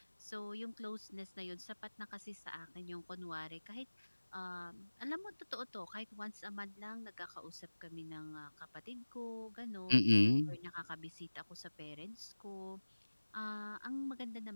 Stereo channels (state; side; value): inverted; both; correlation -1.00